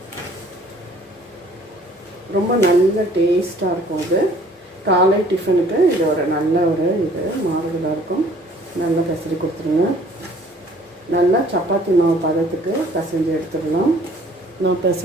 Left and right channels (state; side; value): normal; both; correlation 0.55